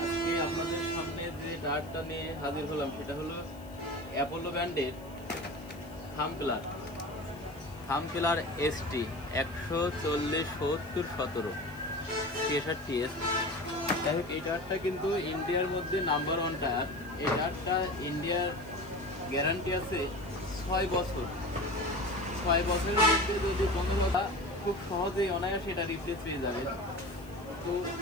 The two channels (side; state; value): left; noise; hiss, 25 dB below the sound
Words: আজকে আপনাদের সামনে যে টায়ারটা নিয়ে হাজির হলাম সেটা হলো অ্যাপোলো ব্র্যান্ডের থামপিলার এসটি 140/70/17 63S। যাই হোক, এই টায়ারটা কিন্তু ইন্ডিয়ার মধ্যে নাম্বার 1 টায়ার। এই টায়ারটা ইন্ডিয়ার গ্যারান্টি আছে 6 বছর। 6 বছরের মধ্যে যদি কোনো কথা খুব সহজেই অনায়াসে এটা রিপ্লেস পেয়ে যাবে। তো